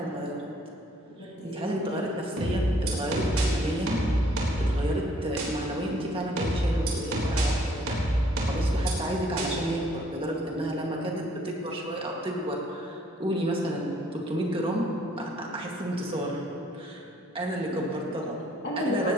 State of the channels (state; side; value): normal; both; correlation 0.63